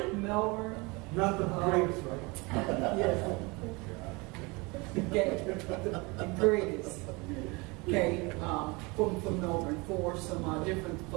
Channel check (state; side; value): quieter; left; 26.4 dB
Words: Melbourne. Not the greatest, right? Yes. Okay, the greatest. Okay, from Melbourne, for some different